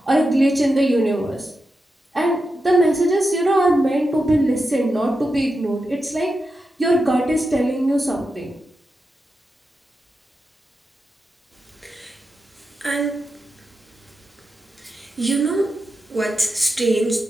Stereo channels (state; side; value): normal; both; correlation 0.89